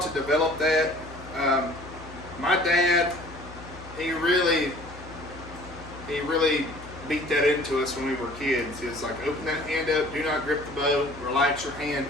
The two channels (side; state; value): left; noise; hum, 16 dB below the sound